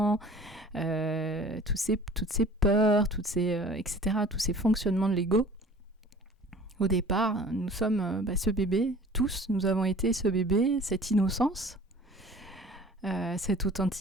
toutes ces peurs, etc., tous ces fonctionnements de l'ego. Au départ, nous sommes ce bébé, tous, nous avons été ce bébé, cette innocence, cette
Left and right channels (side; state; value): both; normal; correlation 0.46